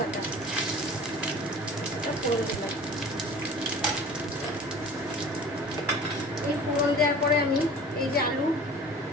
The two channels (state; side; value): normal; both; correlation 0.43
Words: ফোড়ন দিলাম। এই ফোড়ন দেওয়ার পরে আমি এই যে